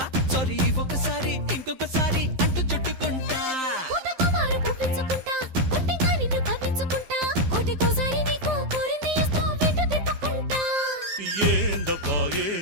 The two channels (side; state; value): left; late; 12 ms